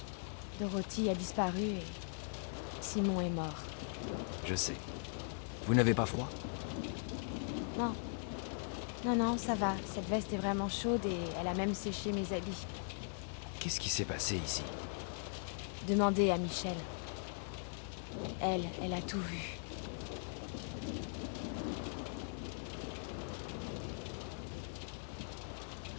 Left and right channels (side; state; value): right; silent; digital silence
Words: Dorothy a disparu et Simon est mort. Je sais. Vous n'avez pas froid? Non. Non, ça va. Cette veste est vraiment chaude et elle a même séché mes habits. Qu'est-ce qui s'est passé ici? Demandez à Michel. Elle a tout vu.